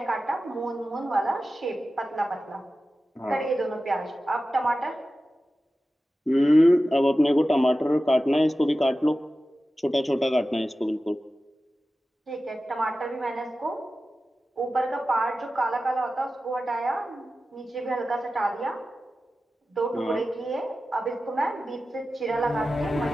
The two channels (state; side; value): normal; both; correlation 0.94